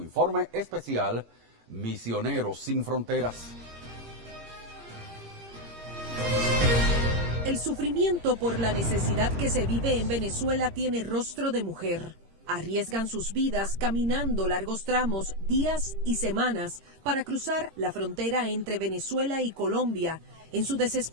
informe especial, Misioneros sin Fronteras. El sufrimiento por la necesidad que se vive en Venezuela tiene rostro de mujer. Arriesgan sus vidas caminando largos tramos, días y semanas para cruzar la frontera entre Venezuela y Colombia en su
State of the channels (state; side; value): late; left; 18 ms